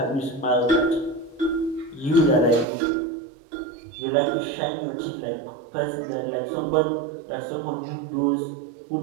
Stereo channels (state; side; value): drops out; left; at 2.7 s